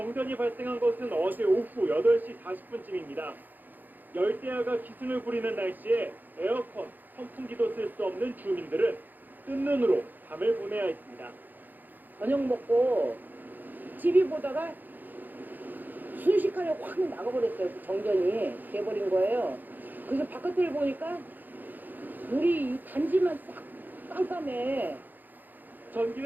발생한 것은 어제 오후 8시 40분쯤입니다. 열대야가 기승을 부리는 날씨에 에어컨, 선풍기도 쓸 수 없는 주민들은 뜬 눈으로 밤을 보내야 했습니다. 저녁 먹고 TV 보다가 순식간에 확 나가버렸어요. 정전이 돼버린 거예요. 그래서 바깥을 보니까 우리 이 단지만 싹 깜깜해.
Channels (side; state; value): left; late; 0.086 ms